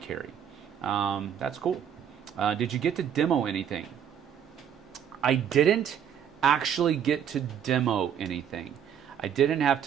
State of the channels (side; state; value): left; quieter; 8.7 dB